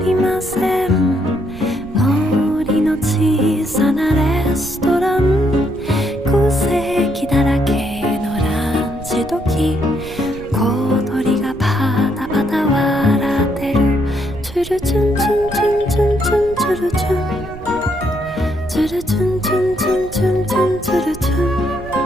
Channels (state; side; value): noise; right; rumble, 15 dB below the sound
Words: ません森の小さなレストラン空席だらけのランチ時小鳥がパタパタ笑ってるチュルチュンチュンチュンチュンチュンチュルチュンチュルチュンチュンチュンチュンチュンチュルチュン